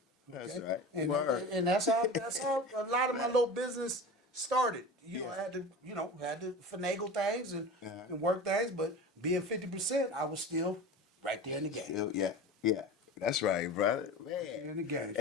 That's Okay? right. And, Word. and that's how a lot of my little business started. Yeah. I had to finagle things and work things, but being 50%, I was still right there in the game. Yeah. That's right, brother. Man. In the game.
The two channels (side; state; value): both; normal; correlation 0.33